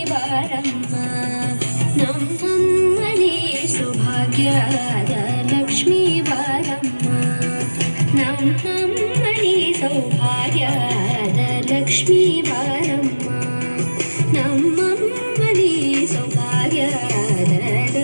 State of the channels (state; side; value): inverted; both; correlation -1.00